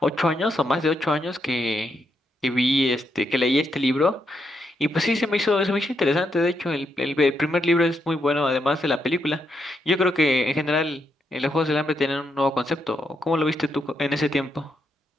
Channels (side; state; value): both; normal; correlation 0.80